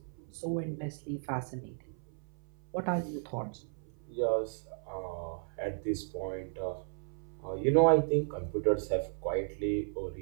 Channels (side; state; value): left; silent; 55 dB below the other